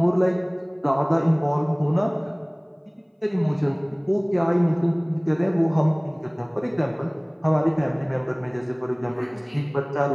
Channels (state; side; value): identical; both; correlation 1.00